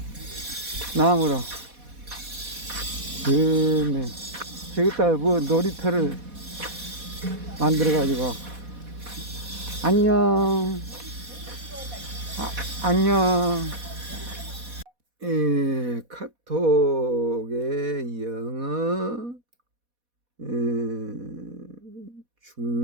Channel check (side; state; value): left; late; 4.1 ms